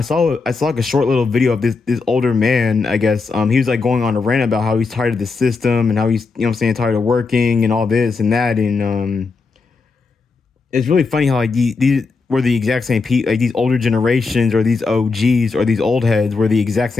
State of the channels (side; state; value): right; quieter; 4.3 dB